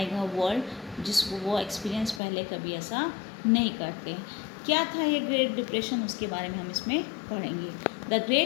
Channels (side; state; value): right; drops out; at 2.2 s